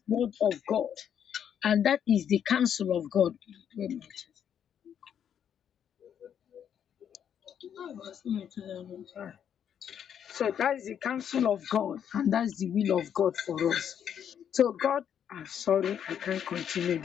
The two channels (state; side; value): quieter; right; 8.8 dB